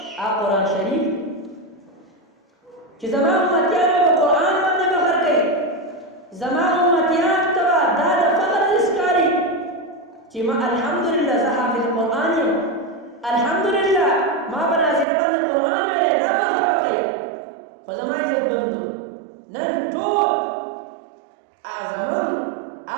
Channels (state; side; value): drops out; left; at 15.1 s